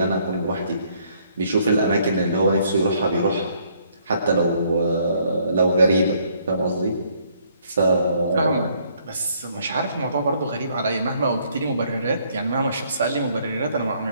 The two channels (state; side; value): inverted; both; correlation -0.66